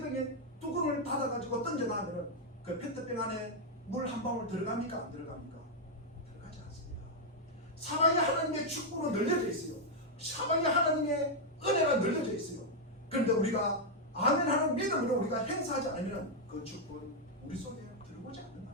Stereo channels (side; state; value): both; normal; correlation -0.01